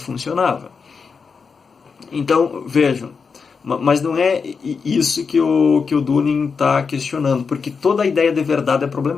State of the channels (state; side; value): quieter; right; 5.4 dB